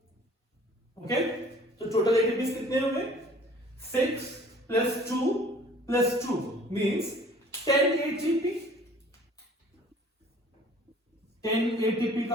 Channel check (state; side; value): normal; both; correlation 0.52